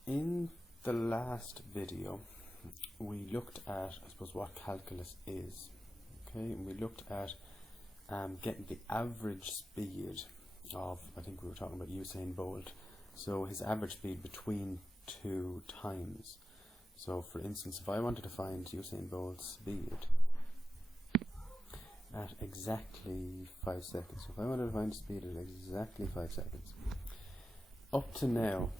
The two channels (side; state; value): both; normal; correlation 0.91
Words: In the last video we looked at, I suppose, what calculus is. Okay, and we looked at getting the average speed of, I think we were talking about Usain Bolt. So his average speed between two times. So for instance, if I wanted to find Usain Bolt's speed at exactly 5 seconds. So if I wanted to find speed at exactly 5 seconds, up to now